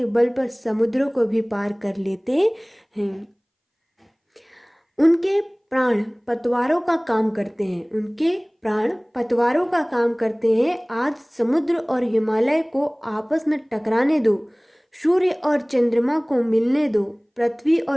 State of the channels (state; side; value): identical; both; correlation 1.00